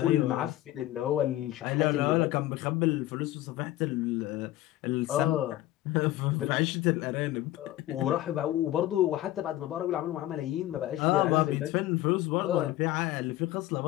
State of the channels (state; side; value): quieter; right; 15.0 dB